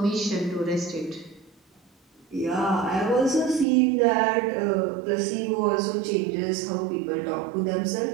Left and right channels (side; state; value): left; drops out; at 3.7 s